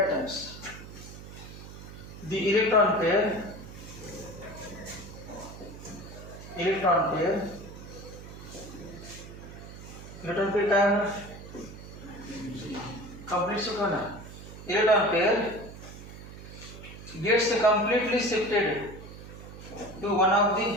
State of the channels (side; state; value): right; noise; hum, 14 dB below the sound